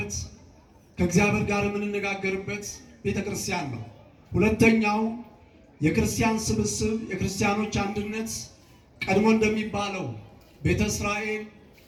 ከእግዚአብሔር ጋር የምንነጋገርበት ቤተ ክርስቲያን ነው። ሁለተኛው የክርስቲያን ስብስብ፣ የክርስቲያኖች አንድነት ቀድሞ እንደሚባለው ቤተ እስራኤል፣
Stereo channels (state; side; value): identical; both; correlation 1.00